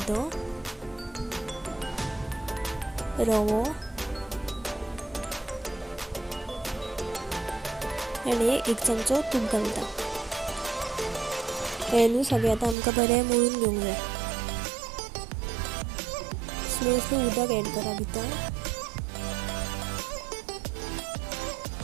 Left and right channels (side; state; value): left; drops out; at 12.8 s